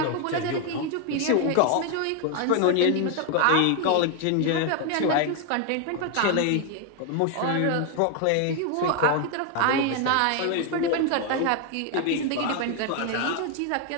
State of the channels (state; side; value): different; both; correlation 0.01